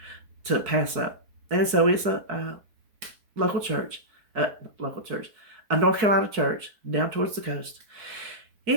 to pass up. And so it's a local church, a North Carolina church down towards the coast.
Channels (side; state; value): left; late; 4.6 ms